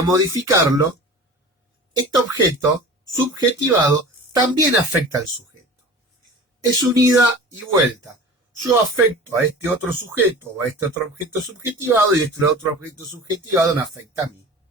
modificarlo, este objeto subjetivado también afecta al sujeto. Es un ida y vuelta. Yo afecto a este otro sujeto o a este otro objeto subjetivado y este otro objeto subjetivado me afecta a mí.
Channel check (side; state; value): both; normal; correlation 0.38